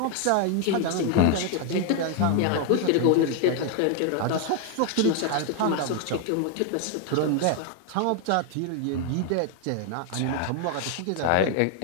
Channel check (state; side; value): different; both; correlation 0.00